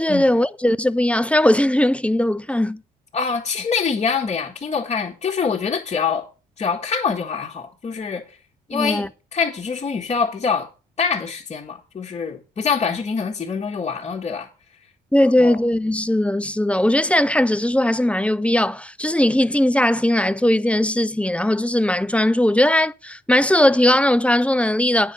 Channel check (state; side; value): normal; both; correlation 0.80